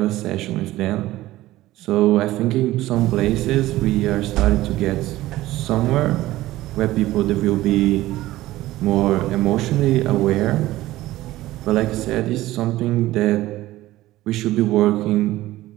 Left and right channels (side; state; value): left; quieter; 16.4 dB